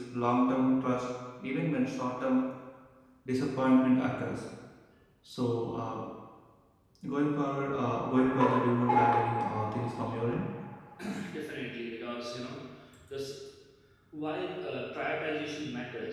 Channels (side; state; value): both; identical; correlation 1.00